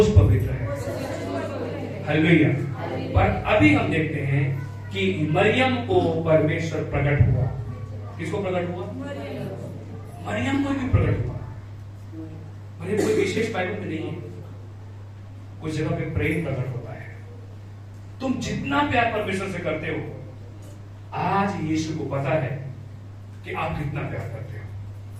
पवित्र है। हालेलुया। पर अभी हम देखते हैं कि मरियम को परमेश्वर प्रकट हुआ। किसको प्रकट हुआ? मरियम को भी प्रकट हुआ। मरियम कोई विशेष बाइबल में नहीं है, कुछ जगह पे प्रेम प्रकट होता है। तुम जितना प्यार परमेश्वर से करते हो, आज यीशु को पता है कि आप कितना प्यार करते हो।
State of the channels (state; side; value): identical; both; correlation 1.00